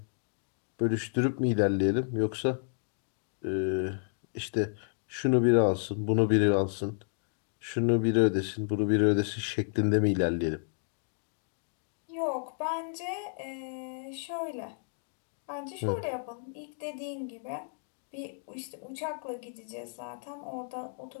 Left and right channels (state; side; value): silent; right; 57 dB below the other